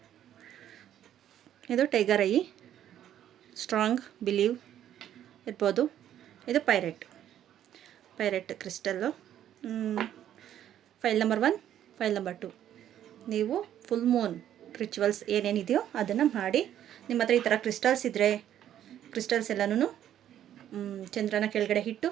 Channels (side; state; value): left; quieter; 10.9 dB